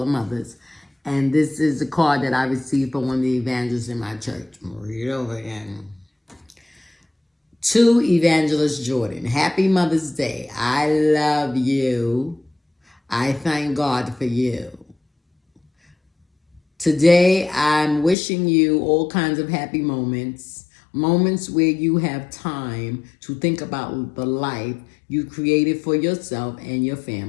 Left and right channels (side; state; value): right; drops out; at 18.2 s